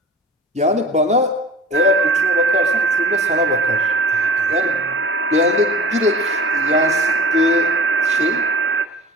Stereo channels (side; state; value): both; normal; correlation 0.39